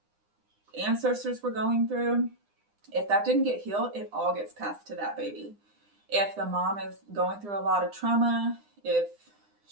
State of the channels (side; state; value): left; late; 9.8 ms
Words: ancestors were going through, if that didn't get healed, it all gets passed to that baby. If the mom is going through a lot of trauma, if